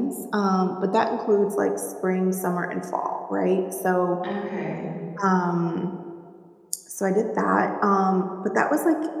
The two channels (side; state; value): both; identical; correlation 1.00